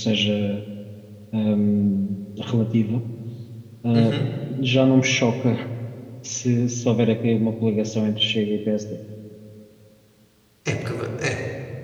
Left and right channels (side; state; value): both; identical; correlation 1.00